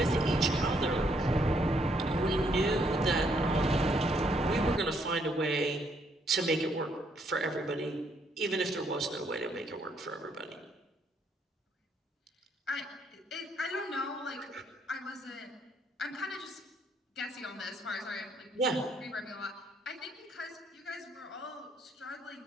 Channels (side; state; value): both; normal; correlation 0.71